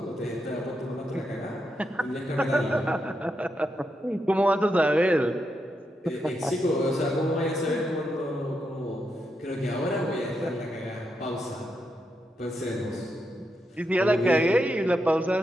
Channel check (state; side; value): normal; both; correlation 0.83